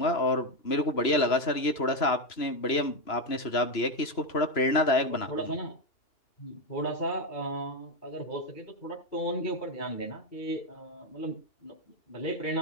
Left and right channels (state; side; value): late; right; 3.0 ms